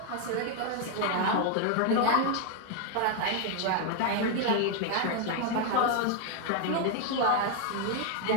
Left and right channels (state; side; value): different; both; correlation 0.01